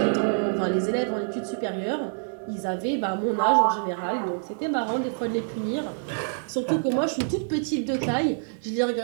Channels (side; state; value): left; silent; digital silence